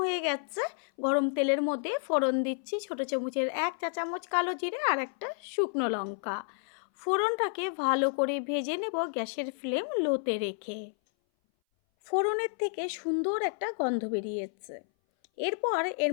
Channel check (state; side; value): silent; right; 57 dB below the other